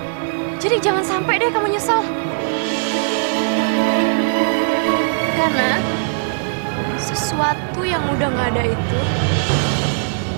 Jadi jangan sampai deh kamu nyesel. Karena sesuatu yang udah gak ada itu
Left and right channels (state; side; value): silent; left; digital silence